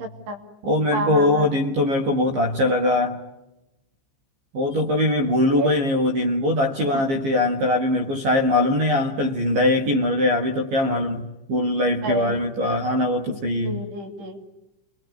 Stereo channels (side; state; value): left; late; 15 ms